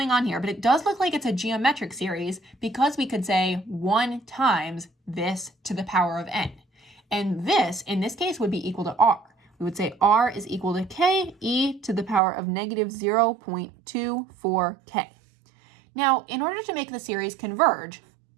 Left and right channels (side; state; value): left; drops out; at 12.2 s